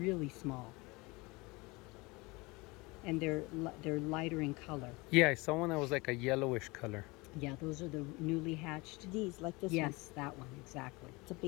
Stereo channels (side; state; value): right; quieter; 24.5 dB